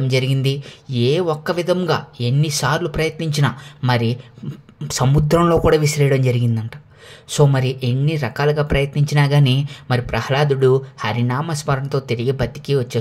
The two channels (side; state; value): both; identical; correlation 1.00